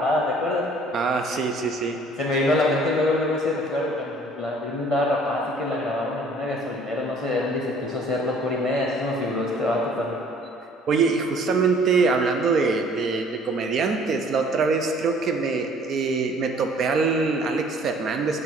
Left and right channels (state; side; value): normal; both; correlation 0.55